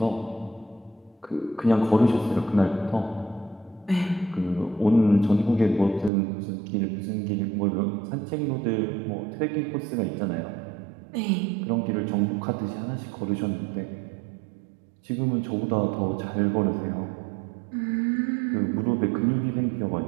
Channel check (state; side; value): drops out; left; at 6.1 s